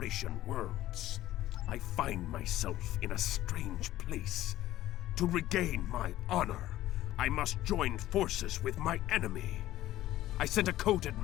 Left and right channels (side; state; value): right; quieter; 14.6 dB